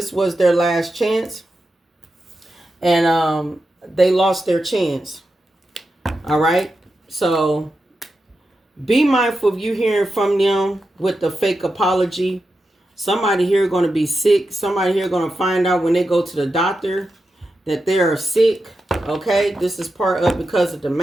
was their last chance. And they lost their chance. All right. So be mindful of you hearing from them with the fake apology. Somebody here going to be sick. Somebody here going to find out when they go to the doctor that they are sick. Okay. This is part of because of the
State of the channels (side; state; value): both; normal; correlation 0.89